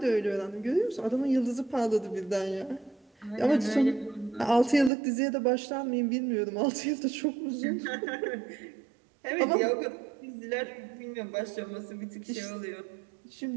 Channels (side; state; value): left; drops out; at 4.9 s